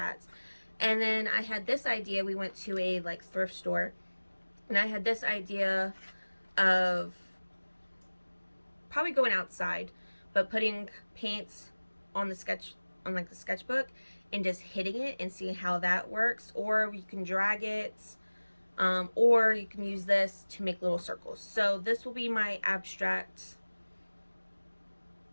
And then I had this idea. We went to a like thrift store, and I had this idea of probably going outside, but putting paints on the sketchbook and just hitting it and seeing how that works. Or you can drag it, or you can use this to make little circles. So this will be my abstract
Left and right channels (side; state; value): both; inverted; correlation -1.00